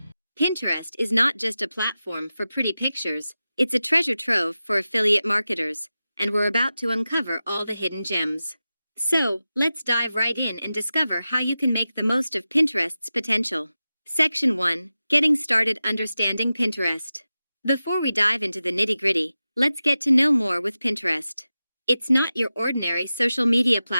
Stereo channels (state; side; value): inverted; both; correlation -0.94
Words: Pinterest is not just a platform for pretty pictures, it's a treasure trove for affiliate marketers, and we're about to uncover all the hidden gems. So, let's dive right in and discover how you can make the most of Pinterest's potential. Section 1. Getting started understanding Pinterest. Before we dive into the nitty-gritty, let's get to know more with Pinterest. It's not your ordinary social media